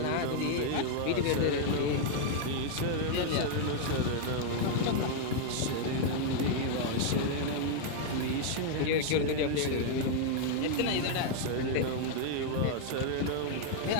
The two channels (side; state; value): both; different; correlation 0.00